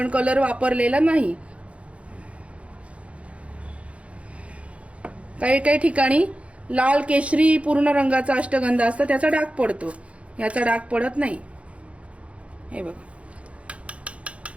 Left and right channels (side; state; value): left; late; 0.062 ms